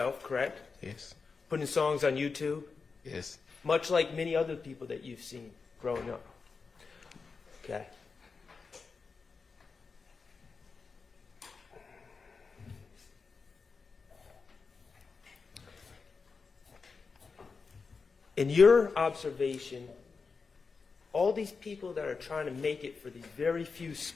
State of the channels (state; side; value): quieter; right; 4.8 dB